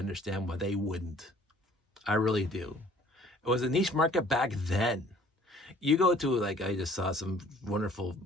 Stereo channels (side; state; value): both; normal; correlation 0.55